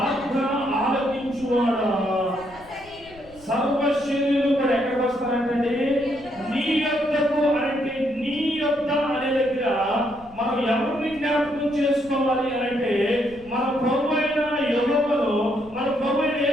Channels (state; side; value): noise; left; rumble, 23 dB below the sound